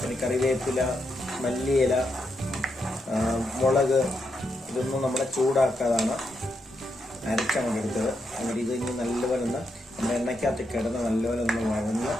കറിവേപ്പില, മല്ലിയില, മുളക് ഇതൊന്നും നമ്മളെ ചൂടാക്കാതാണ് അരച്ചങ്ങോട്ട് എടുത്തത്. എന്നിട്ട് ഇത് ഇനി നല്ലപോലെ ഒന്ന് നമ്മുടെ എണ്ണയ്ക്കകത്ത് കിടന്ന് നല്ലപോലെ ഒന്ന് വഴന്ന്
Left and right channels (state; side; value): normal; both; correlation 0.82